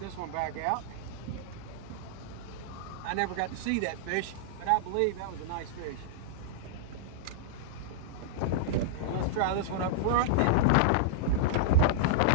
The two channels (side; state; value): both; different; correlation -0.02